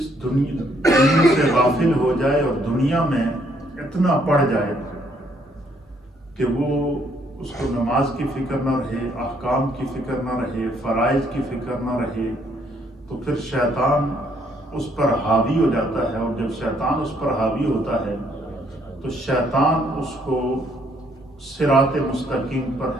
دنیا سے غافل ہو جائے اور دنیا میں اتنا پڑ جائے کہ وہ اس کو نماز کی فکر نہ رہے، احکام کی فکر نہ رہے، فرائض کی فکر نہ رہے، تو پھر شیطان اس پر حاوی ہو جاتا ہے، اور جب شیطان اس پر حاوی ہوتا ہے تو شیطان اس کو صراط مستقیم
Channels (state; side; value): normal; both; correlation 0.68